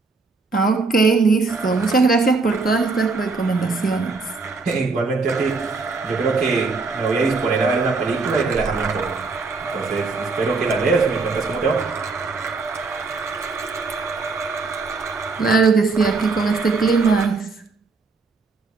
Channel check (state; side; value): quieter; left; 4.0 dB